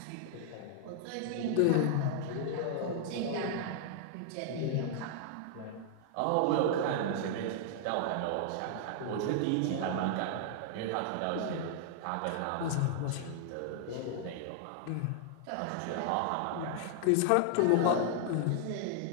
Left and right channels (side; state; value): both; different; correlation -0.01